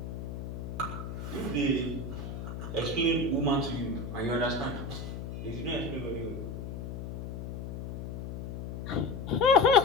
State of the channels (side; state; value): left; noise; hum, 7 dB below the sound